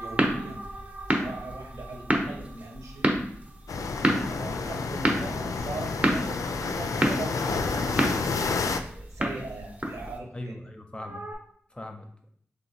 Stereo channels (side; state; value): both; normal; correlation 0.77